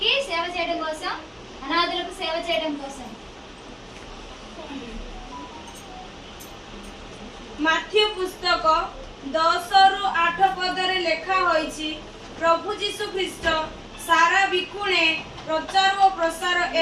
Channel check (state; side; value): identical; both; correlation 1.00